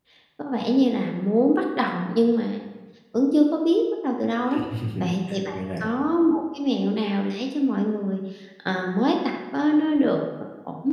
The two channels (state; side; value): identical; both; correlation 1.00